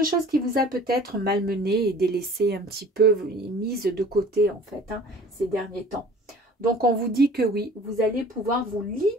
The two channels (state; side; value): normal; both; correlation 0.47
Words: qui vous a peut-être malmené et délaissé un petit peu, mise de côté en fait, hein, ces derniers temps. Donc on vous dit que oui, vous allez pouvoir vous